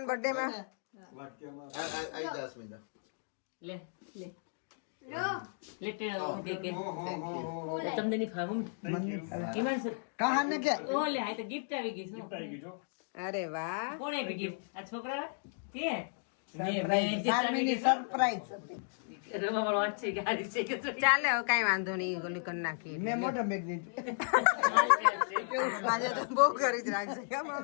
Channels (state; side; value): silent; right; digital silence